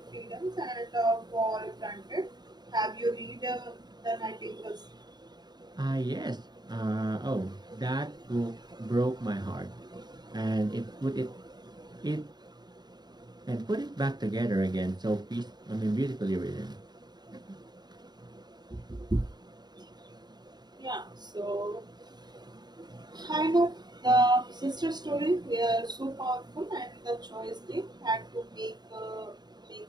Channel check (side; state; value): left; late; 0.20 ms